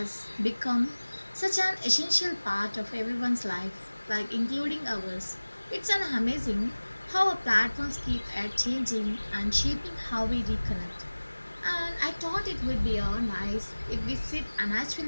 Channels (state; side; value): inverted; both; correlation -1.00